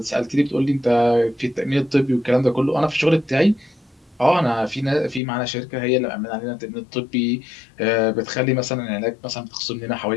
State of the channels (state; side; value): drops out; right; at 5.2 s